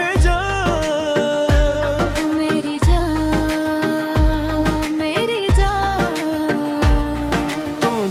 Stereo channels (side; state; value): both; identical; correlation 1.00